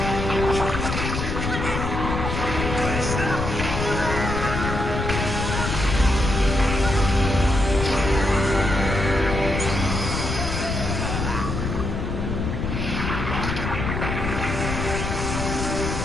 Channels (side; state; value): left; noise; rumble, 3 dB below the sound